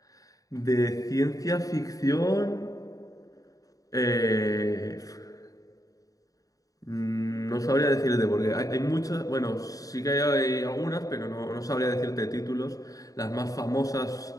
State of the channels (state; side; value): late; right; 0.17 ms